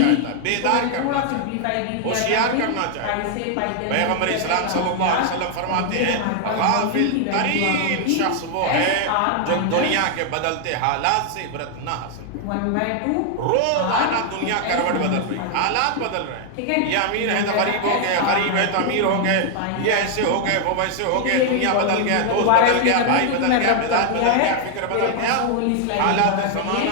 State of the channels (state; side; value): different; both; correlation 0.00